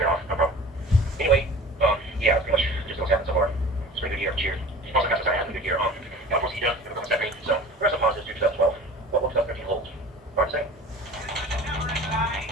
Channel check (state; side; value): normal; both; correlation 0.41